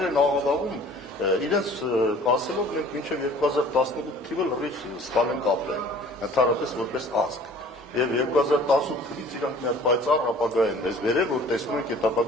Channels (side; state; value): both; normal; correlation 0.49